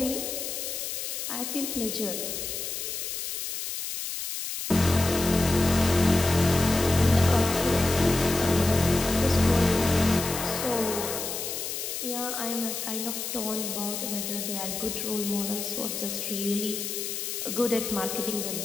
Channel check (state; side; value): noise; left; hiss, 5 dB below the sound